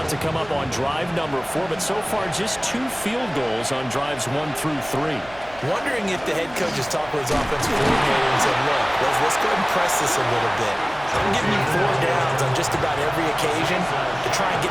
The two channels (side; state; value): right; noise; hum, 22 dB below the sound